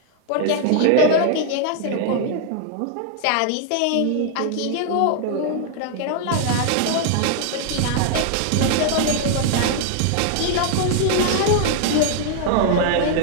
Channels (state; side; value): different; both; correlation 0.00